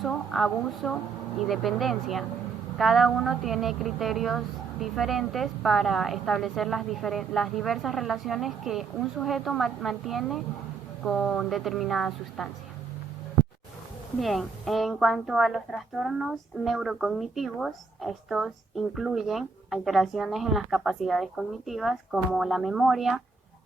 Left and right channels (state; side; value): quieter; left; 4.7 dB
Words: abuso y dependencia. Cada uno tiene criterios diferentes para establecer las diversas relaciones que un sujeto mantiene con determinada sustancia. Bien, en cuanto a los trastornos neurocognitivos, estos incluyen alteraciones en las capacidades cognitivas como la memoria,